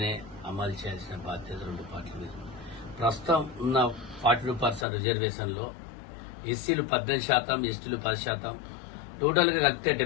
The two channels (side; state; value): right; drops out; at 4.9 s